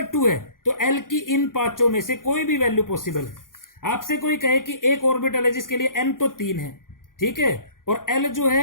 2 है तो l की इन 5 में से कोई भी वैल्यू पॉसिबल है। आपसे कोई कहे कि एक ऑर्बिटल है जिसके लिए n तो 3 है, ठीक है, और एल जो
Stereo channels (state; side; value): late; right; 0.90 ms